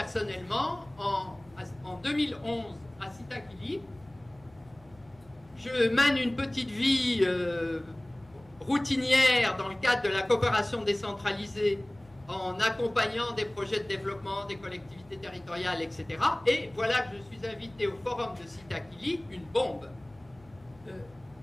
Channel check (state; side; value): noise; left; hum, 26 dB below the sound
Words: en 2011 à Sitakili. Je mène une petite vie routinière dans le cadre de la coopération décentralisée en accompagnant des projets de développement des collectivités territoriales, etc. Et voilà que je suis invité au forum de Sitakili, une bombe.